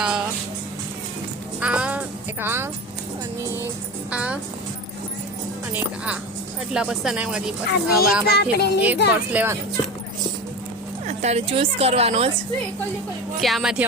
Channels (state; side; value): normal; both; correlation 0.27